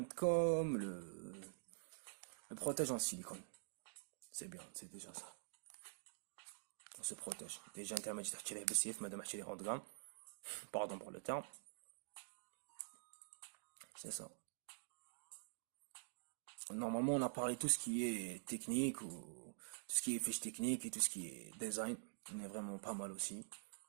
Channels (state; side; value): silent; left; digital silence